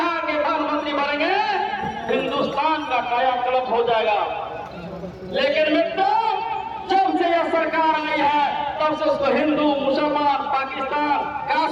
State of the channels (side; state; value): both; identical; correlation 1.00